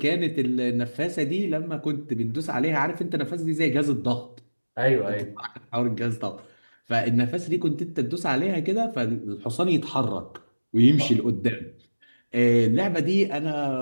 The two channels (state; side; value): inverted; both; correlation -1.00